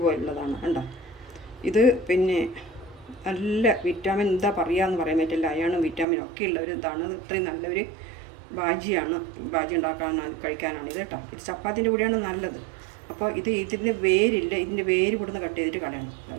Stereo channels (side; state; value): left; drops out; at 6.1 s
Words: കണ്ടോ. ഇത് പിന്നെ നല്ല വിറ്റാമിൻ എന്താ പറയുകയെന്ന് പറയാൻ പറ്റില്ല, അയണും വിറ്റാമിനും ഒക്കെ ഉള്ള ഒരു ഇതാണ്. ഇത്രയും നല്ലൊരു ബാജി കഴിക്കാനാണ് ഇത് കേട്ടോ. ഇത് ചപ്പാത്തിൻ്റെ കൂടെയാണ് നല്ലത്. അപ്പോൾ ഇതിൻ്റെ വേരില്ല, ഇതിൻ്റെ വേര് ഇവിടുന്ന് കട്ട് ചെയ്തിട്ട് കളയണം.